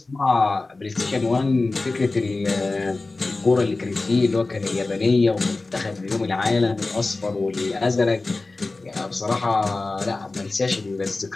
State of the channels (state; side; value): quieter; right; 3.4 dB